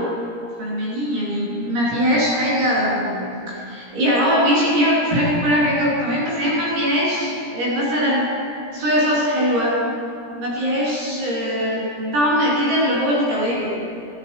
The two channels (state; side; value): late; left; 17 ms